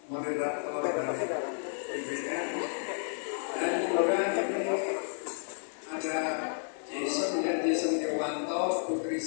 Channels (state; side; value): silent; right; 57 dB below the other